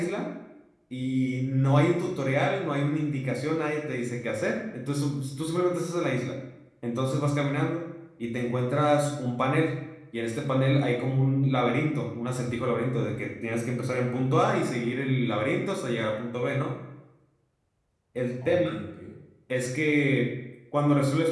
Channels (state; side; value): identical; both; correlation 1.00